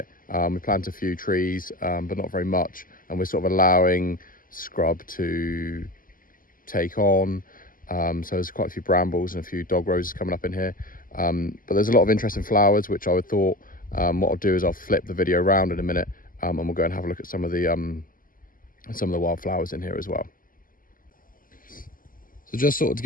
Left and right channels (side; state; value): right; late; 0.41 ms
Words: We planted a few trees, but not very much, and we're sort of allowing scrub to take on. So there's quite a few brambles and a few dog roses coming up in here, but there's a lot of interesting flowers, which I would thought what I'll do is I'll flip the video around in a minute, and we'll go and have a look at some of the wildflowers in here as well. So just sort of to